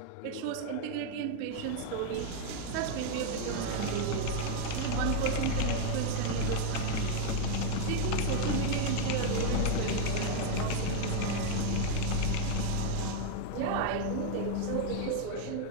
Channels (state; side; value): different; both; correlation 0.01